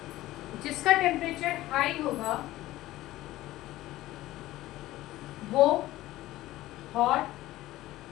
जिसका टेम्परेचर हाई होगा वो हॉट,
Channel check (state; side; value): quieter; right; 16.3 dB